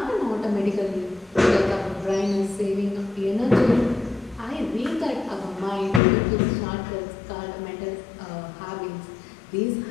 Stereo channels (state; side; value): drops out; right; at 6.0 s